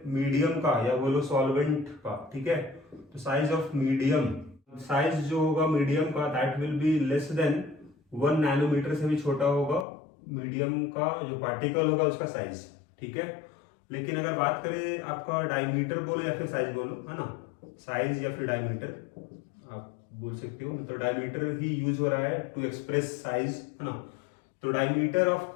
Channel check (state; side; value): drops out; right; at 9.9 s